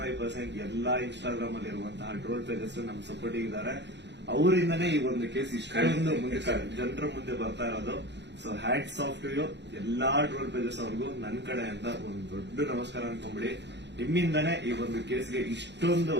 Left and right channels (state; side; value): late; left; 0.51 ms